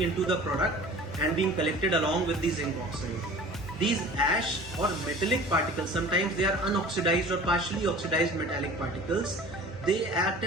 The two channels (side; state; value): both; normal; correlation 0.43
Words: into the product and being collected along with the zinc oxide. These ash or metallic particles, sometimes they are unoxidized or partially oxidized metallic particles. They act